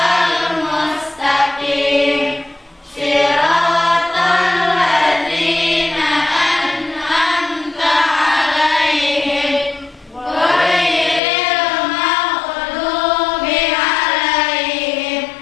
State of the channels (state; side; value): drops out; right; at 11.2 s